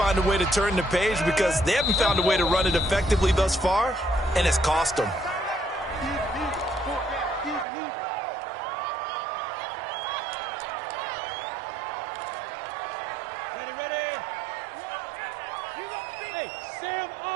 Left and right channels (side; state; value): left; drops out; at 7.7 s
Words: a way to turn the page because they haven't found a way to run it effectively thus far, and it's cost them. Hey, Sam